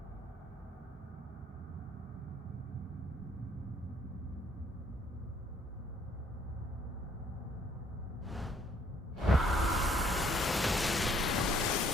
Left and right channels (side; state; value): both; normal; correlation 0.64